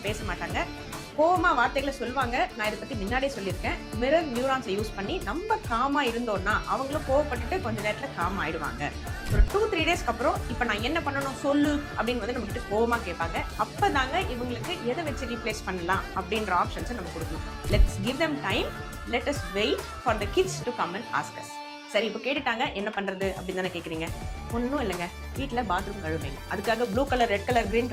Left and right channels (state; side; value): identical; both; correlation 1.00